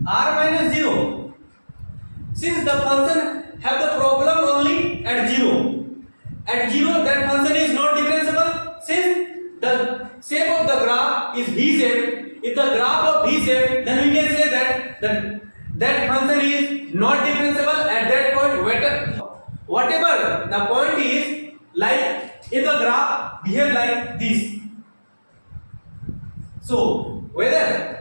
r minus 0. Since the function have the problem only at 0. At 0 that function is not differentiable. Since the shape of the graph is V shape, if the graph of V shape, then we can say that function is not differentiable at that point. Whatever the point is, like if the graph behave like this. So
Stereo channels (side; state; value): both; inverted; correlation -1.00